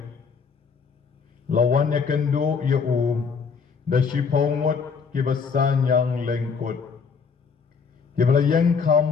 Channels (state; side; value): quieter; right; 5.6 dB